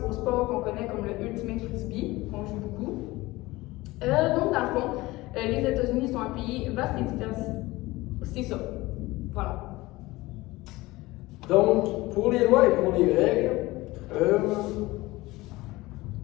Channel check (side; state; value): right; quieter; 19.9 dB